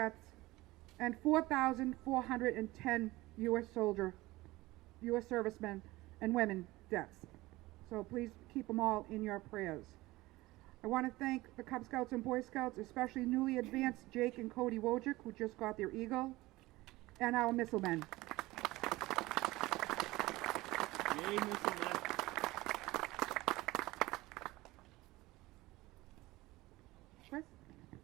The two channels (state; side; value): quieter; left; 19.4 dB